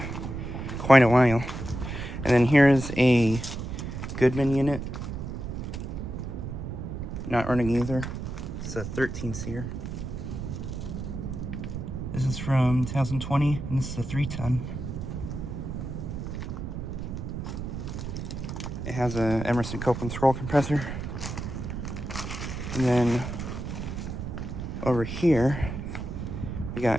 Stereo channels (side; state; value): right; noise; rumble, 6 dB below the sound